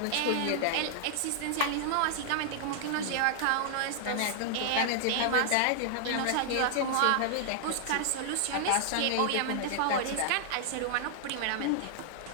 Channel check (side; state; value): both; different; correlation -0.01